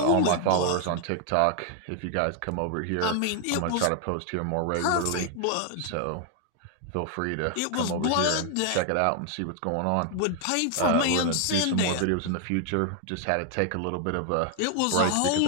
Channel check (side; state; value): both; different; correlation 0.00